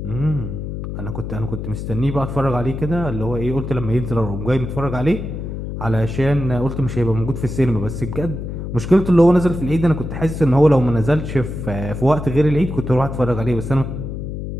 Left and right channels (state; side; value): noise; left; hum, 6 dB below the sound